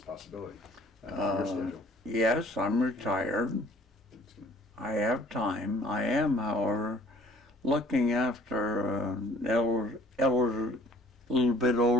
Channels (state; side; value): normal; both; correlation 0.54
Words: possibility, for your schedule. Yes, I'm retired. I have time. I am, however, looking after an elder, little bit